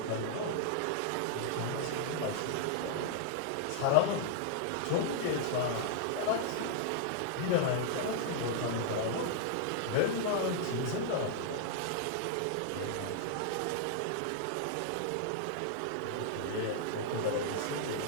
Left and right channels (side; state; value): both; different; correlation -0.01